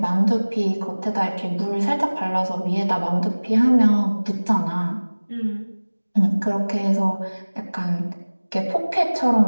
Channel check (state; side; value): inverted; both; correlation -1.00